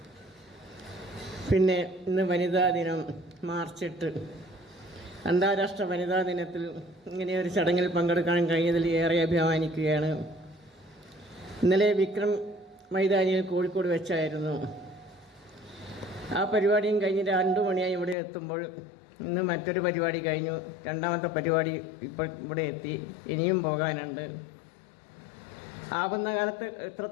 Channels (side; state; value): right; drops out; at 18.2 s